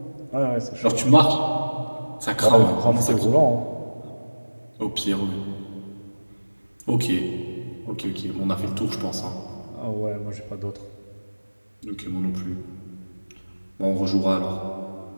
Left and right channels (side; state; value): both; inverted; correlation -1.00